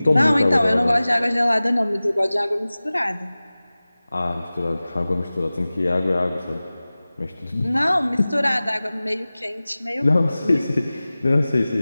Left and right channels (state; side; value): inverted; both; correlation -0.98